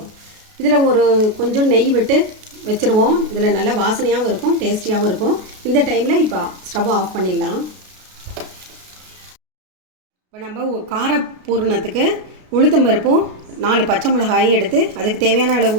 இதில் ஒரு கொஞ்சம் நெய் விட்டு வச்சுருவோம். இதில் நல்லா வாசனையாகவும் இருக்கும், டேஸ்டியாகவும் இருக்கும். இந்த டைமில் இப்போ ஸ்டவ் ஆஃப் பண்ணிடலாம். இப்போ நம்ம கார பூரணத்துக்கு உளுத்தம்பருப்பும் 4 பச்சை மிளகாயும் எடுத்து அதுக்கு தேவையான அளவு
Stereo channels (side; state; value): left; late; 33 ms